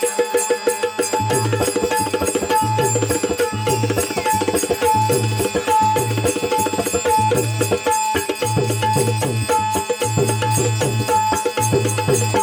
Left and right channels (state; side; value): identical; both; correlation 1.00